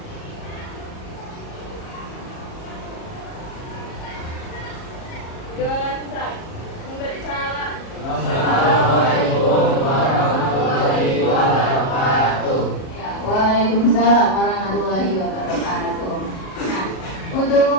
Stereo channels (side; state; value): right; late; 37 ms